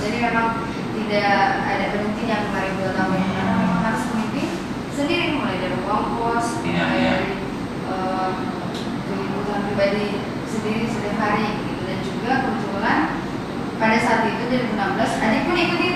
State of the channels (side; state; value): both; identical; correlation 1.00